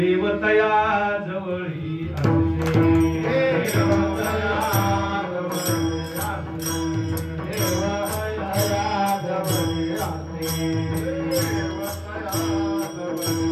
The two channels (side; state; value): both; identical; correlation 1.00